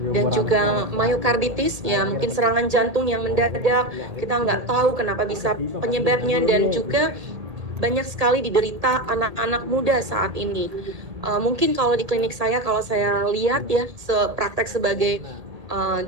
dan juga myokarditis, ya mungkin serangan jantung yang mendadak, kita nggak tahu kenapa bisa penyebabnya, dan juga banyak sekali diderita anak-anak muda saat ini. Mungkin kalau di klinik saya, kalau saya lihat ya, praktek sebagai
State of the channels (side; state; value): left; late; 1.8 ms